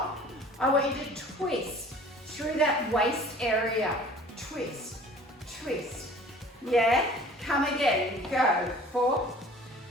I want you to twist through that waist area. Twist, twist. Yeah? Come again. Go. 4,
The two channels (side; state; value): both; normal; correlation 0.48